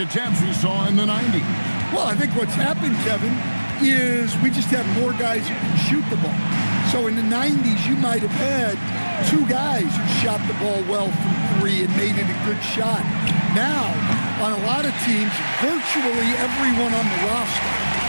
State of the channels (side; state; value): both; inverted; correlation -1.00